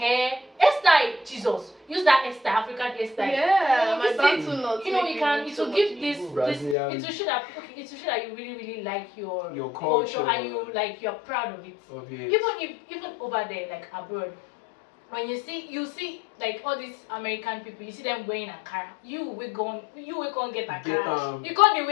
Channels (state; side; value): drops out; right; at 6.8 s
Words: hairstyle. Jesus, use that hairstyle, African hairstyle. Yeah, my back to not. You know, it will give this. It will show that you really like your culture and you're proud of it. Even over there, like abroad, when you see like all these American people, you see them wearing Ankara. You will go get Ankara. You can't